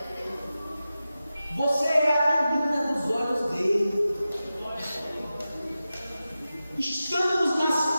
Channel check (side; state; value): both; inverted; correlation -0.93